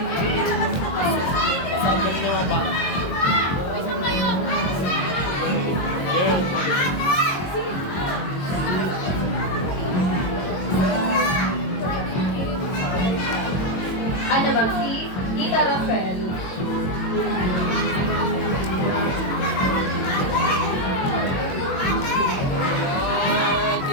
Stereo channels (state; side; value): late; right; 22 ms